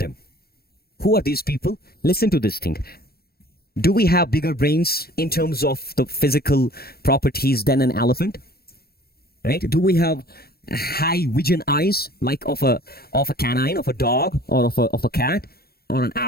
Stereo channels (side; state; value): right; late; 0.45 ms